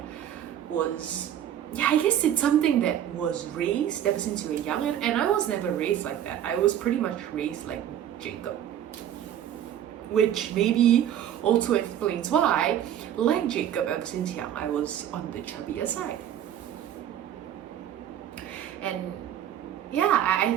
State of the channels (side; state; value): left; quieter; 10.6 dB